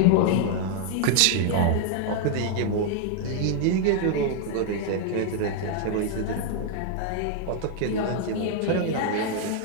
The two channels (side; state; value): both; different; correlation 0.00